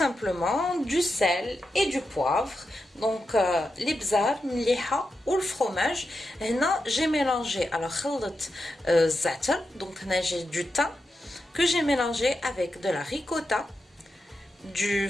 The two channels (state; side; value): normal; both; correlation 0.88